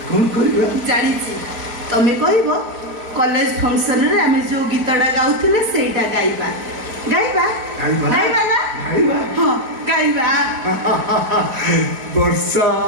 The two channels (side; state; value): left; late; 4.4 ms